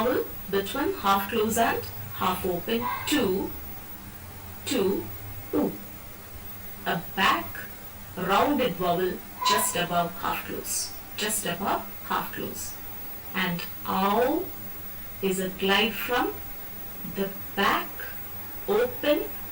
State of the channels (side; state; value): both; identical; correlation 1.00